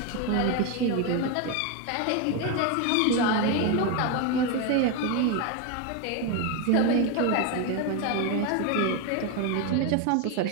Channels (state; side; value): different; both; correlation 0.02